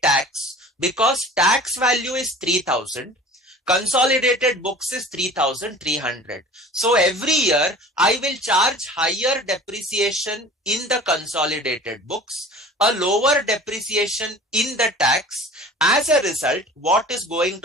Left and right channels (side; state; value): both; normal; correlation 0.42